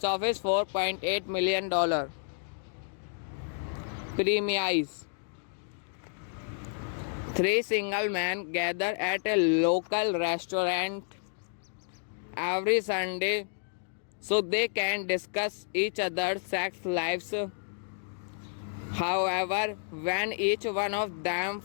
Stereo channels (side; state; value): right; silent; digital silence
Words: office $4.8 million. Premise. Three single men gather at a local restaurant every Sunday so they can discuss each other's sex lives. However, when each one of them